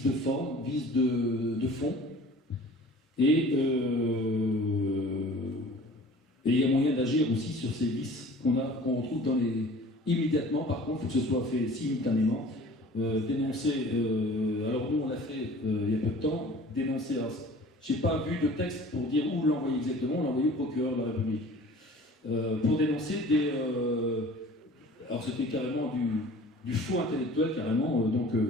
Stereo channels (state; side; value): normal; both; correlation 0.46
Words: de forme, vices de fond, et il y a moyen d'agir aussi sur ces vices qu'on retrouve dans les... Immédiatement, par contre, il faut que ce soit fait simultanément. Dénoncer, alors nous on l'a fait il y a peu de temps, dénoncer, je n'ai pas vu de texte pour dire où l'envoyer exactement, on l'a envoyé au procureur de la République. Pour dénoncer des... alors c'était carrément du faux intellectuel, carrément, donc